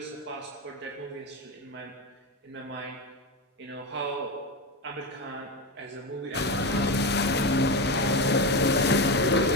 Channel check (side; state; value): both; normal; correlation 0.16